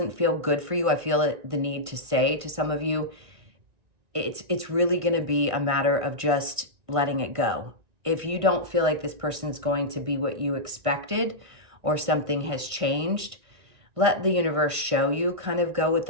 feel good for you, I feel the need to say to some of you, it's really going to be a matter of just letting it go. If you don't feel like this person's going to be what you expected or something has changed, let the universe show you. Kind of go with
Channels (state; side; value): late; left; 1.5 ms